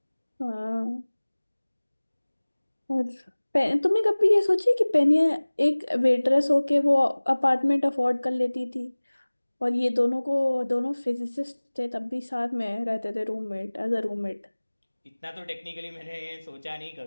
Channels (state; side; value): inverted; both; correlation -1.00